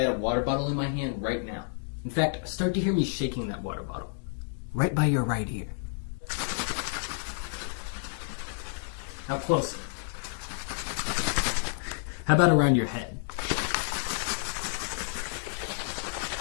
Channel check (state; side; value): silent; right; 58 dB below the other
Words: a water bottle in my hand right now. In fact, start to hear me shaking that water bottle. Right by your right ear. Now closer. How about around your head?